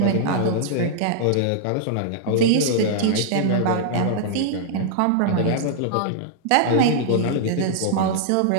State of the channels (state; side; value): different; both; correlation -0.01